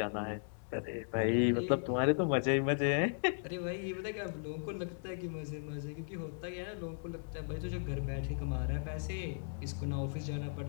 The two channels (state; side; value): silent; right; digital silence